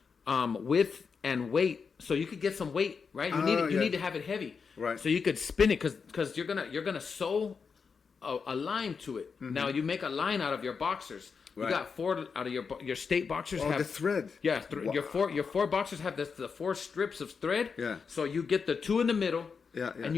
width and weight. So you could get some weight, right? You need to have it heavy. Right. So you could spin it because you're gonna sew a line to it. Mm-hmm. Now you make a line out of your boxers. Right. You got 4 out of your state boxers have the thread. Yeah, your 4 boxers have the 4 strips of thread. Yeah. So you get the 2 in the middle. Yeah. And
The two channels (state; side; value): quieter; right; 5.6 dB